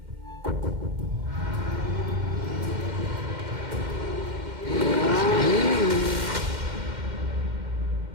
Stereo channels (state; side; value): late; left; 2.1 ms